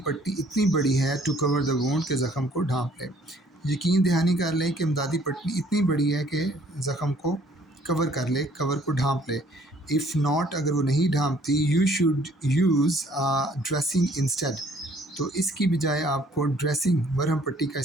پٹی اتنی بڑی ہے، ٹو کور دا وونڈ، کہ زخم کو ڈھانپ لے۔ یقین دہانی کر لیں کہ امدادی پٹی اتنی بڑی ہے کہ زخم کو کور کر لے، کور کو ڈھانپ لے۔ اف ناٹ، اگر وہ نہیں ڈھانپتی، you should use dressing instead, تو اس کی بجائے آپ کو ڈریسنگ، مرہم پٹی کا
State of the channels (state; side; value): normal; both; correlation 0.60